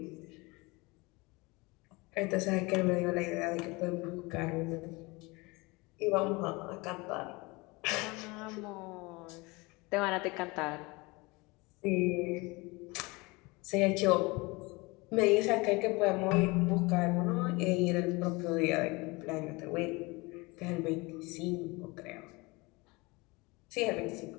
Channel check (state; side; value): quieter; right; 25.0 dB